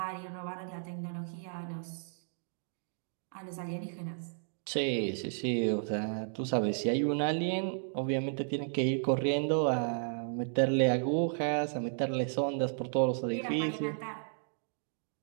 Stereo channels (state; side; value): silent; left; digital silence